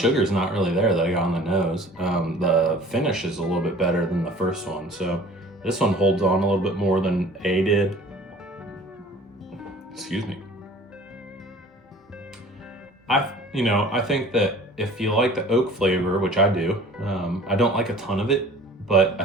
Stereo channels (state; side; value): normal; both; correlation 0.47